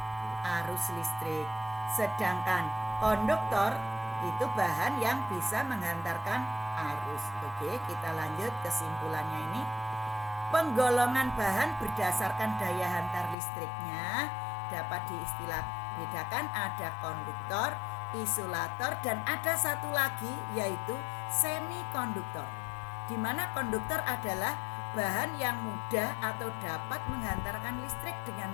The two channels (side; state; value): right; drops out; at 13.4 s